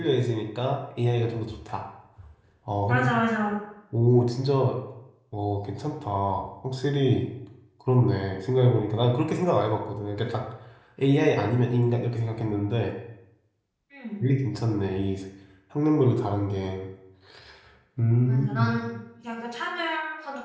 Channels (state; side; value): identical; both; correlation 1.00